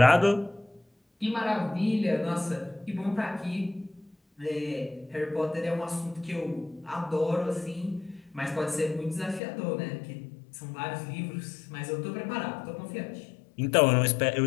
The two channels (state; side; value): drops out; right; at 9.4 s